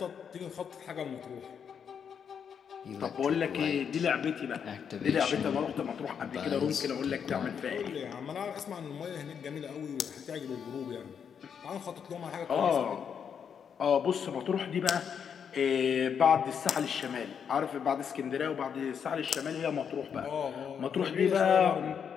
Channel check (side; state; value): right; quieter; 7.4 dB